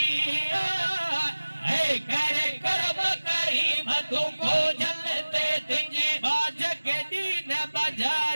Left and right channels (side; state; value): both; inverted; correlation -1.00